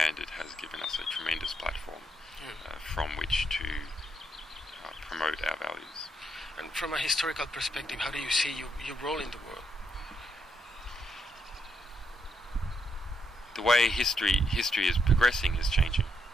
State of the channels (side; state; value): both; normal; correlation 0.78